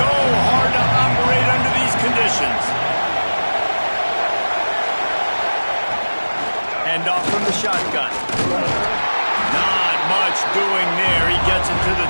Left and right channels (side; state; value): both; inverted; correlation -1.00